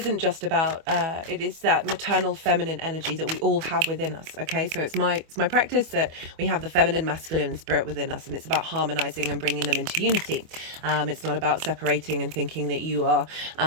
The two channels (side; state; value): left; late; 25 ms